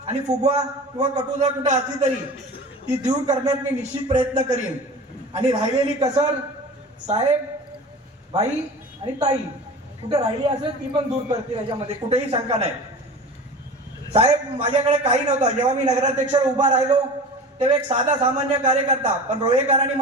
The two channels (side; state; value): both; normal; correlation 0.35